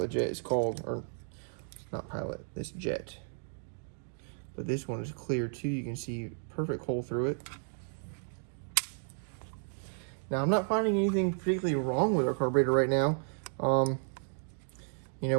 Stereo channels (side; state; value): left; silent; 56 dB below the other